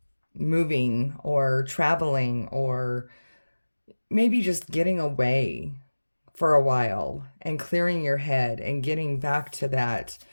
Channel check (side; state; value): both; inverted; correlation -1.00